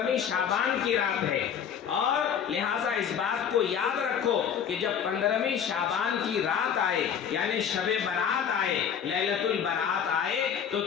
شعبان کی رات ہے. اور لہٰذا اس بات کو یاد رکھو کہ جب 15ویں شعبان کی رات آئے، یعنی شب برات آئے، لیلۃ البرات آئے، تو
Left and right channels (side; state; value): right; quieter; 8.0 dB